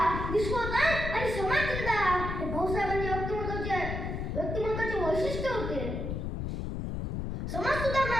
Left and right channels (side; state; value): left; noise; rumble, 3 dB below the sound